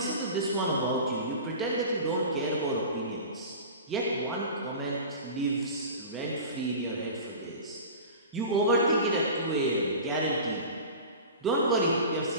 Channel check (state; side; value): inverted; both; correlation -0.34